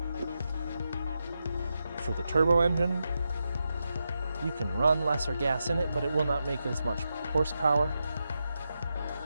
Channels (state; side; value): inverted; both; correlation -0.87